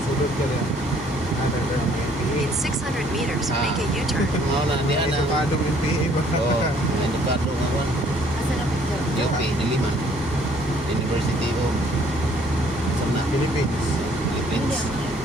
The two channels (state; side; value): normal; both; correlation 0.61